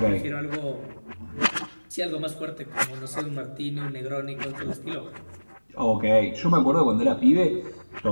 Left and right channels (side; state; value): both; inverted; correlation -1.00